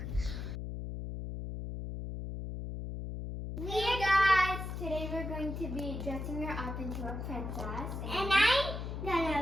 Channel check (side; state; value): left; noise; hum, 6 dB below the sound